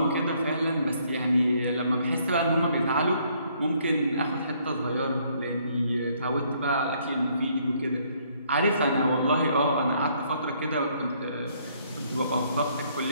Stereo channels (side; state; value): both; inverted; correlation -0.67